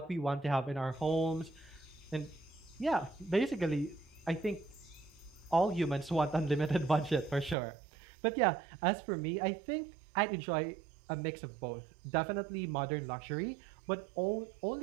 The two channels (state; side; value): drops out; left; at 7.6 s